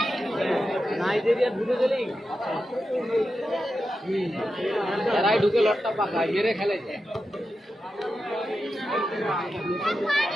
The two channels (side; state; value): both; normal; correlation 0.90